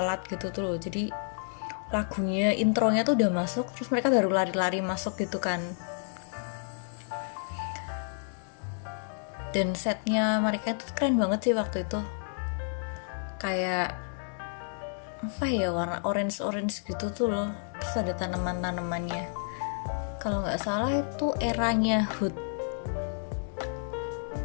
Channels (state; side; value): silent; right; digital silence